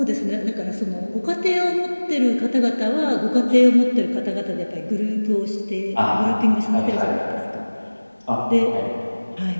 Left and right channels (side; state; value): both; inverted; correlation -1.00